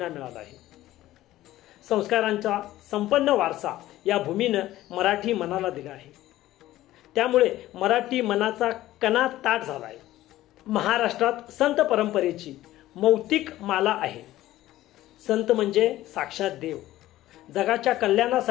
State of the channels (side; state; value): right; quieter; 15.2 dB